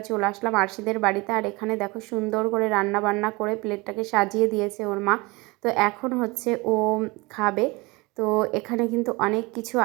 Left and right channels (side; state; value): left; quieter; 24.9 dB